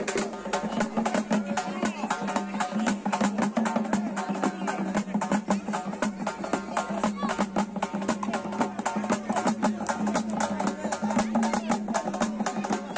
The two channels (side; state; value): both; identical; correlation 1.00